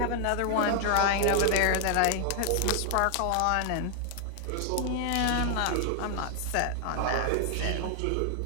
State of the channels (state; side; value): different; both; correlation 0.00